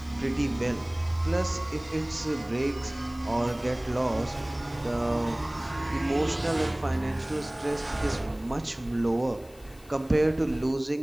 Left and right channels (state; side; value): noise; left; hiss, 25 dB below the sound